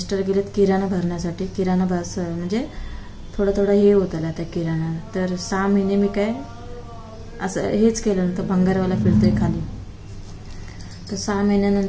गेलेत किराणा भरण्यासाठी, किराणा बस म्हणजे थोडं हे होतं आता किराणा, तर 6 महिने मी काय असं हेच केलं नंतर भंगारवाला फिरतोय खाली, तर 6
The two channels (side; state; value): both; identical; correlation 1.00